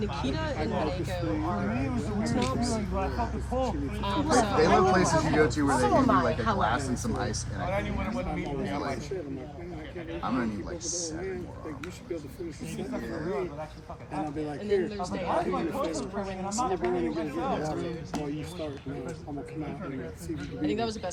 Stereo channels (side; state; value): both; identical; correlation 1.00